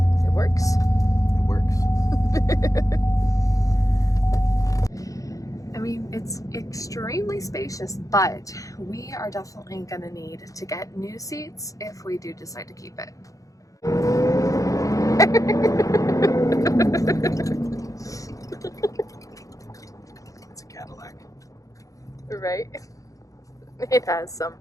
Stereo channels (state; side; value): late; right; 0.16 ms